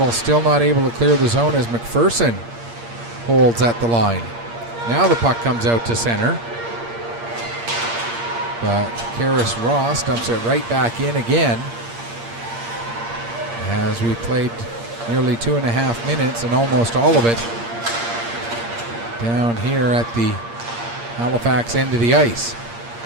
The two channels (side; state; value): left; late; 8.6 ms